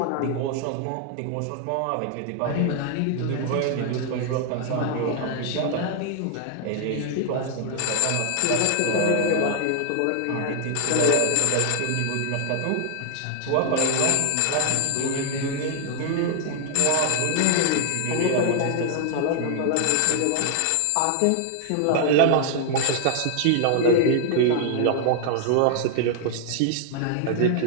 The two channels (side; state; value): both; different; correlation 0.00